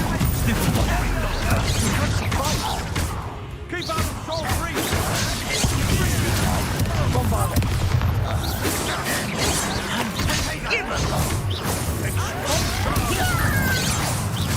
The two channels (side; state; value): both; identical; correlation 1.00